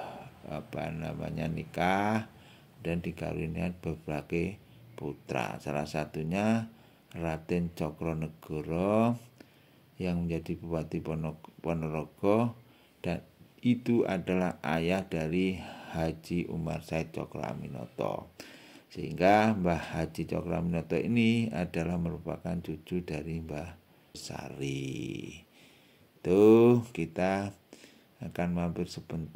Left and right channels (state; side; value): identical; both; correlation 1.00